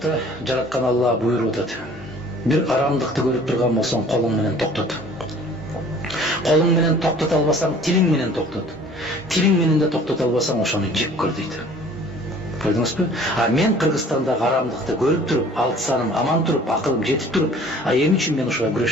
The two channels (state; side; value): normal; both; correlation 0.50